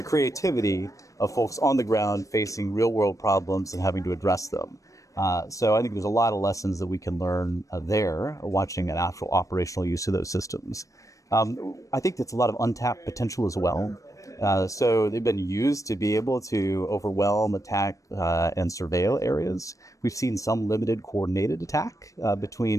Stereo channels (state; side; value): late; right; 0.16 ms